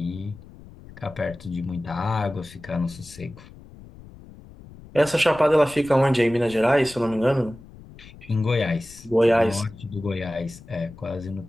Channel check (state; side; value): noise; left; rumble, 19 dB below the sound